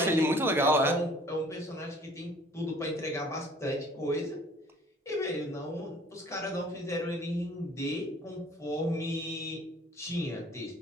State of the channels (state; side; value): normal; both; correlation 0.53